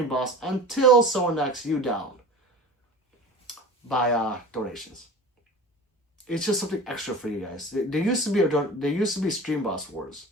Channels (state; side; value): normal; both; correlation 0.37